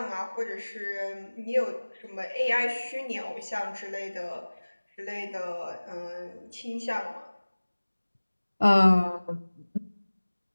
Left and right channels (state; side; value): inverted; both; correlation -1.00